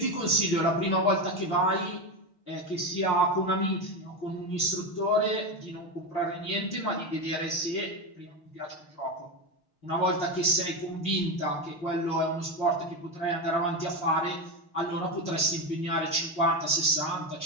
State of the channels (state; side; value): late; right; 6.4 ms